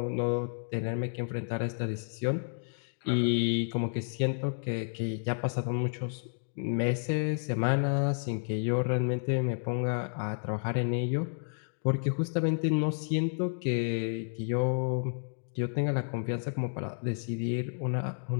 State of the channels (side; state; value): right; silent; digital silence